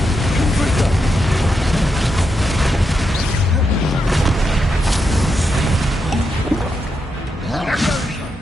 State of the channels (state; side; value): normal; both; correlation 0.84